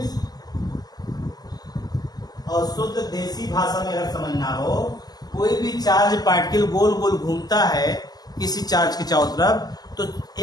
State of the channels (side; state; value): right; late; 0.19 ms